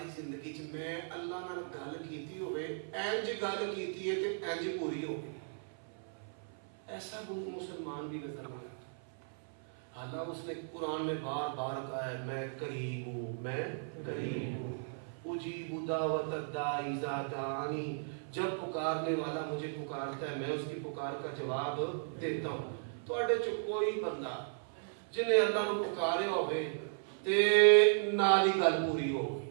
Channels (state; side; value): silent; left; 54 dB below the other